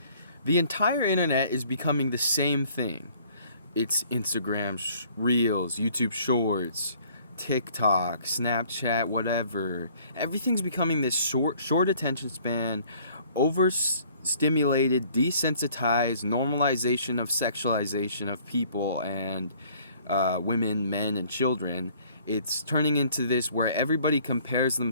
The entire internet is becoming the same thing. It's Instagram Reels, YouTube Shorts, TikTok, Snapchat, whatever. Everything's becoming this short attention span, overstimulated, desensitized normalization of sexualization of people and women, men, and children. It's turning into this where everybody compares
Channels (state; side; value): inverted; both; correlation -0.57